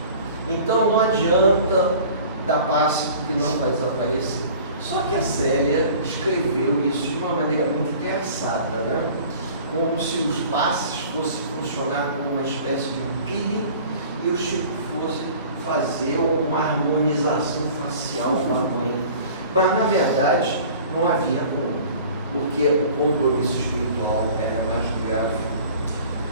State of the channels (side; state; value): both; inverted; correlation -0.46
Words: Então não adianta dar passe porque não vai desaparecer. Só que a Célia escreveu isso de uma maneira muito engraçada, como se os passes fossem funcionar como uma espécie de um peeling e o Chico fosse fazer uma harmonização facial com a mãe. Mas, na verdade, não havia como, porque o compromisso espiritual era mais grave.